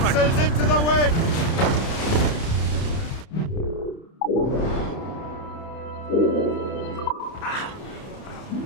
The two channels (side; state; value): right; late; 30 ms